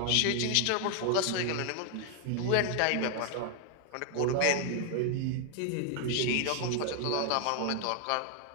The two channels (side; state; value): both; different; correlation 0.00